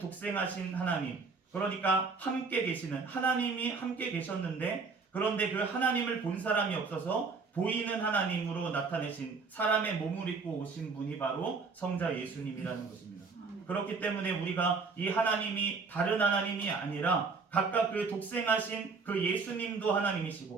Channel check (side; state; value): left; quieter; 4.6 dB